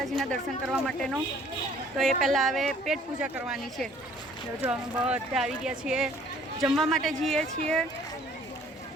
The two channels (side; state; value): both; normal; correlation 0.57